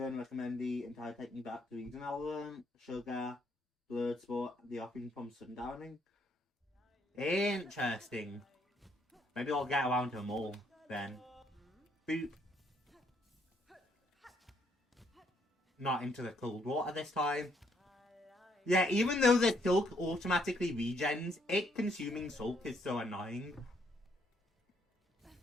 recommend the entire technique back to Eden Element, Sugar, Blurred Sport, the offering from Sundowning. Interesting. Maybe I'll get around to them all then. Boop. Not into the cold water this time. Yeah, even though the silk automatically regens, it consuming silk is so annoying.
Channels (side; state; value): both; normal; correlation 0.71